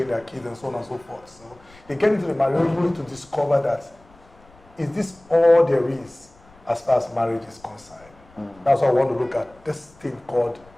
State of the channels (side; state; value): left; noise; rumble, 27 dB below the sound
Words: their kids and so on and so forth? So they get into the marriage only to discover that is this all there is as far as marriage is concerned? That's why I want to look at this thing called